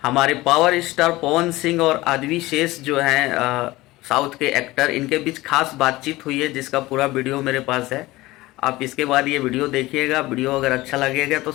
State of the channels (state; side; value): quieter; right; 19.1 dB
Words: हमारे power star Pawan Singh और आदवी शेष जो हैं साउथ के एक्टर, इनके बीच खास बातचीत हुई है जिसका पूरा वीडियो मेरे पास है। आप इसके बाद ये वीडियो देखिएगा। वीडियो अगर अच्छा लगेगा तो